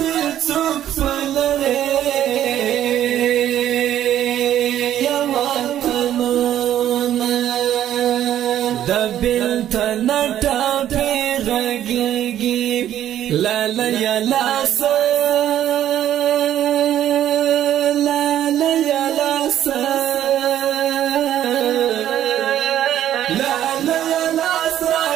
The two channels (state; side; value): quieter; left; 11.5 dB